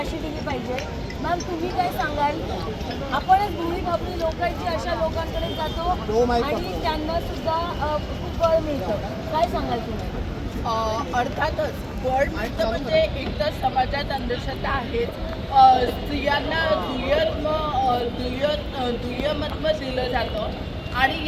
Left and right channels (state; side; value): identical; both; correlation 1.00